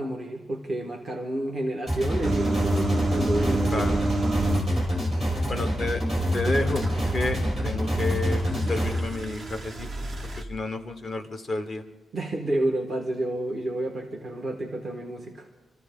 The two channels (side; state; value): both; normal; correlation 0.89